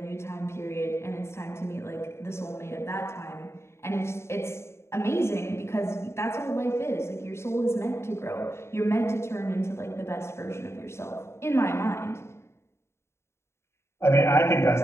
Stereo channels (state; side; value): late; right; 0.13 ms